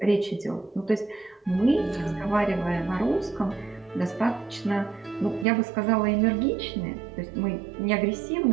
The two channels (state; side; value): drops out; left; at 5.5 s